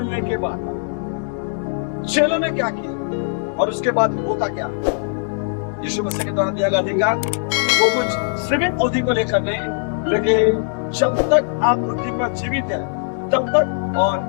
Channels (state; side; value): silent; right; 63 dB below the other